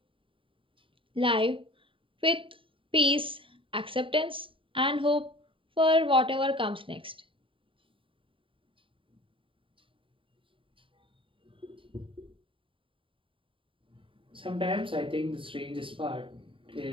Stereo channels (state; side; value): late; left; 0.25 ms